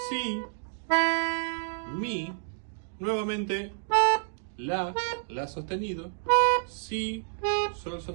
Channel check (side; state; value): left; silent; digital silence